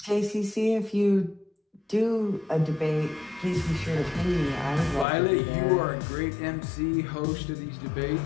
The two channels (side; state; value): right; drops out; at 5.1 s